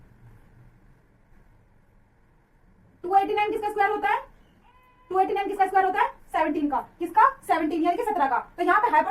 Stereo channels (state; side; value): identical; both; correlation 1.00